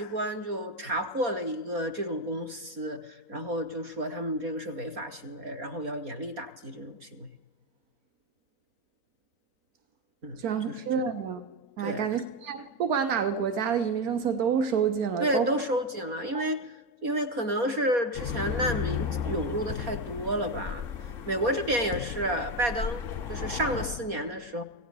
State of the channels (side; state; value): left; late; 4.2 ms